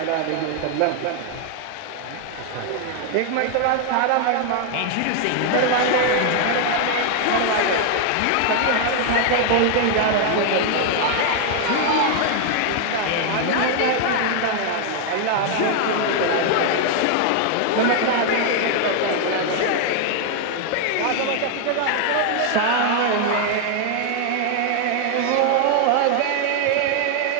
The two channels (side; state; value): both; different; correlation 0.00